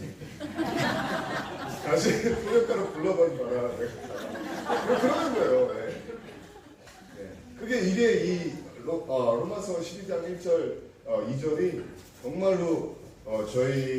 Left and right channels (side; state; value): both; identical; correlation 1.00